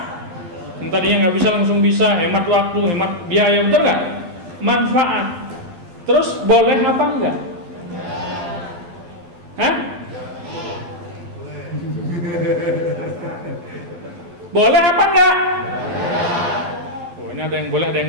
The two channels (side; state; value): left; late; 12 ms